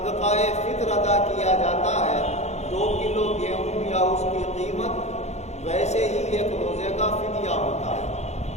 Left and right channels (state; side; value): late; right; 0.32 ms